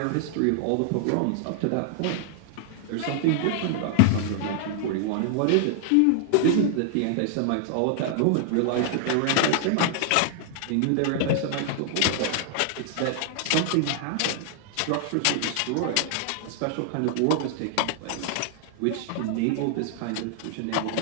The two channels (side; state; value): both; different; correlation 0.00